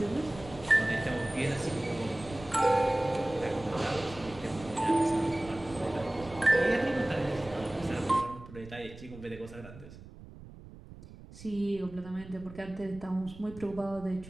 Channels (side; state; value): right; noise; rumble, 17 dB below the sound